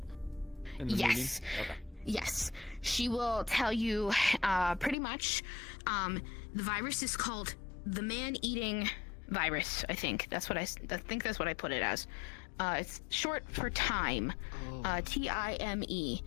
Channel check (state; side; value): drops out; right; at 5.0 s